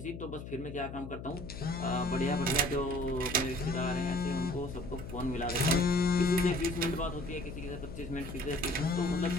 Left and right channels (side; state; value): left; noise; hum, 10 dB below the sound